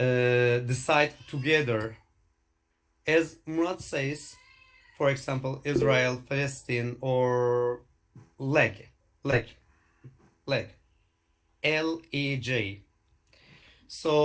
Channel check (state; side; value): identical; both; correlation 1.00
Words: together. As Murat says, for example, Israel, Palestine, or leg, leg, leg, LEJ.